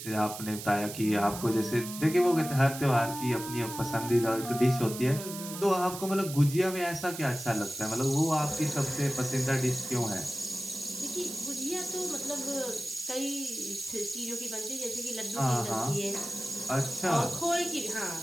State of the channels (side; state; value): right; noise; hiss, 10 dB below the sound